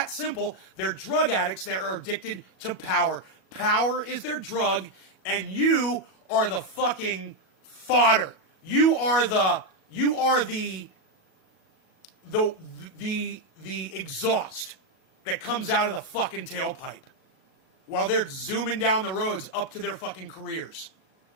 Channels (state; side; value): late; right; 37 ms